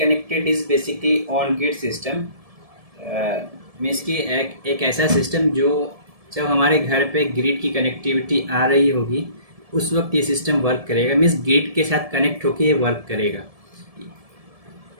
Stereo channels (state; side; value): late; left; 1.7 ms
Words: is basically on grid system, means कि एक ऐसा सिस्टम जो जब हमारे घर पे ग्रिड की कनेक्टिविटी आ रही होगी उस वक्त ये सिस्टम वर्क करेगा, मीन्स ग्रिड के साथ कनेक्ट होकर ये वर्क करेगा।